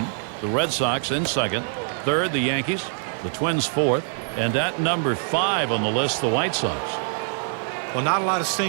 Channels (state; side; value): silent; left; 62 dB below the other